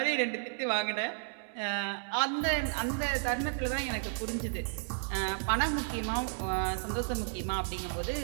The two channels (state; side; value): silent; left; 56 dB below the other